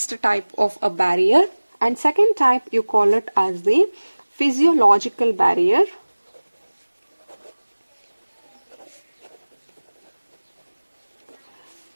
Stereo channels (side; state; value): both; inverted; correlation -1.00